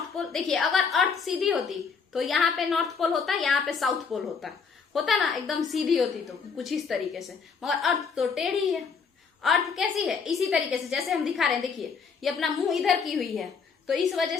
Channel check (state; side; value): quieter; right; 5.6 dB